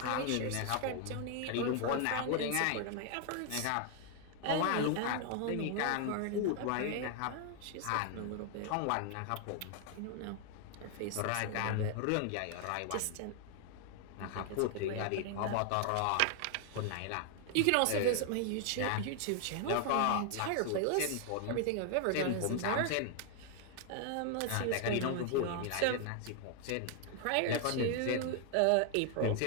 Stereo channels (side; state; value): both; different; correlation 0.00